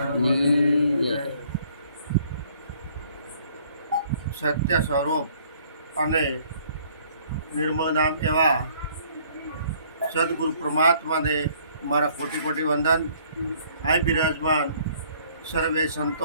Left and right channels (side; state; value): both; inverted; correlation -0.60